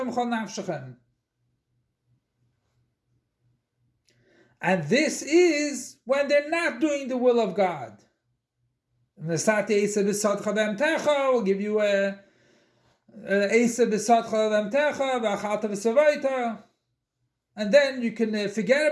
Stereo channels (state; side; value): identical; both; correlation 1.00